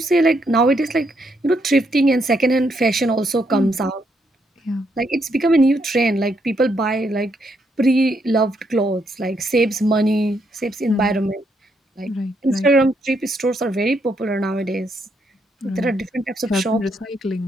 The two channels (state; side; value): normal; both; correlation 0.76